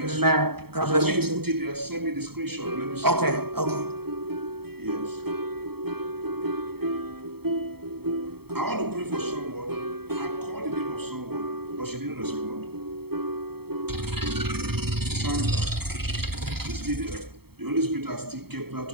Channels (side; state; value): left; late; 0.96 ms